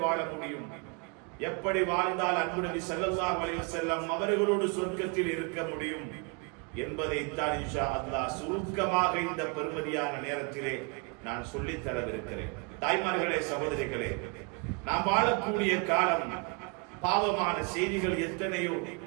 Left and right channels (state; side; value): quieter; left; 33.3 dB